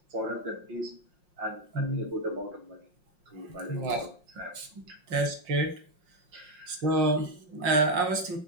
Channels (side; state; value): left; late; 5.6 ms